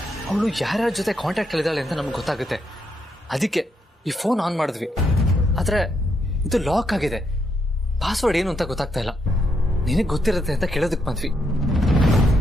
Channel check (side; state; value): both; normal; correlation 0.79